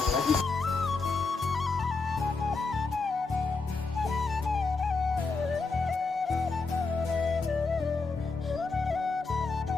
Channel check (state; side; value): quieter; right; 4.1 dB